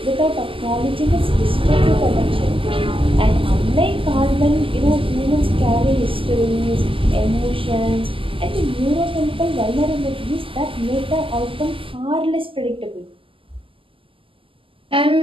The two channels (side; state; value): left; late; 0.25 ms